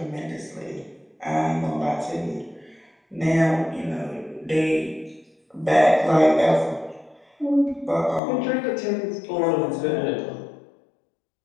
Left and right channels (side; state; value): right; drops out; at 8.2 s